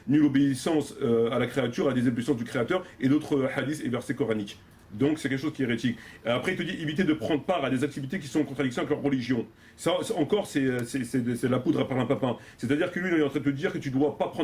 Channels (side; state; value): both; identical; correlation 1.00